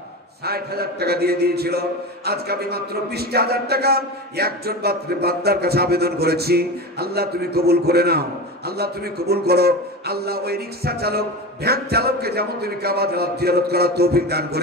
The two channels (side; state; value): both; normal; correlation 0.26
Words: ৬০,০০০ টাকা দিয়ে দিয়েছিল। আজকে আমি মাত্র ২০,০০০ টাকা একজন বান্দার কাছে আবেদন করেছি। আল্লাহ তুমি কবুল করে নাও, আল্লাহ তুমি কবুল করো। আল্লাহ ওই রিক্সা চালক, ভ্যান চালককে যেমন তুমি কাবা জিয়ারত করার তৌফিক দান